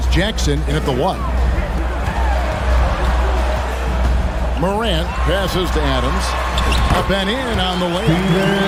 Jackson in at the 1. Morant passes to Adams. Up and in on the lane.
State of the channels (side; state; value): both; identical; correlation 1.00